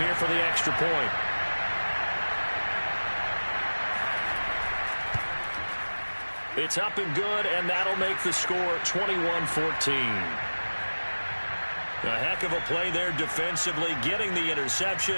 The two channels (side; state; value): both; inverted; correlation -1.00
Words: here for the extra point. It's up and good, and that'll make the score 21-14. A heck of a play there defensively, getting the